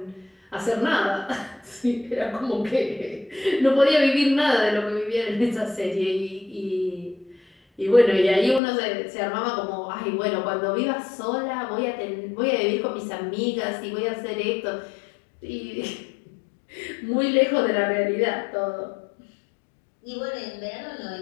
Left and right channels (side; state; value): right; drops out; at 8.6 s